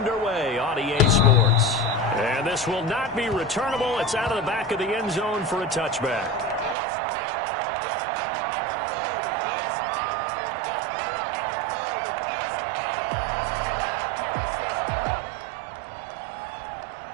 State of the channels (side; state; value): left; drops out; at 6.8 s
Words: on EA Sports. And this will not be returnable. It's out of the back of the end zone for a touchback.